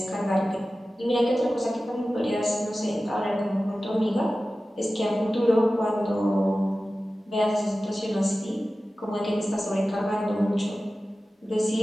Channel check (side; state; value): both; normal; correlation 0.95